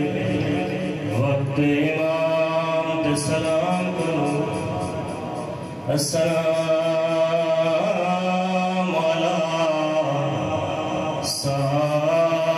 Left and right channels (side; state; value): both; identical; correlation 1.00